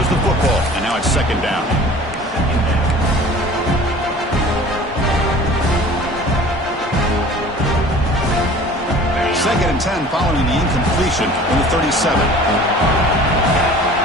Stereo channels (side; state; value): both; normal; correlation 0.45